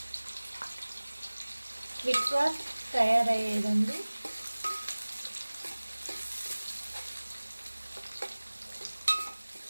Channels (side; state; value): both; inverted; correlation -1.00